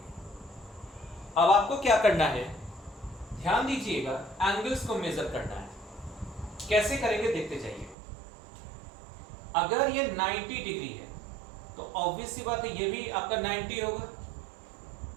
अब आपको क्या करना है, ध्यान दीजिएगा, एंगल्स को मेजर करना है। कैसे करेंगे देखते जाइए। अगर ये 90 डिग्री है तो ऑब्वियस सी बात है ये भी आपका 90 होगा,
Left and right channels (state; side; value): drops out; left; at 8.0 s